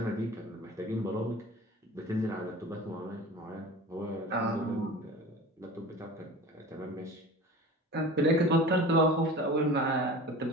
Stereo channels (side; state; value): both; normal; correlation 0.37